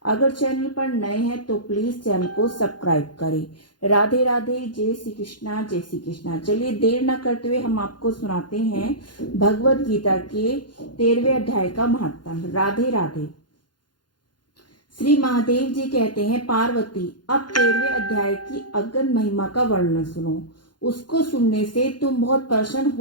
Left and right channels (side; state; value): right; late; 0.71 ms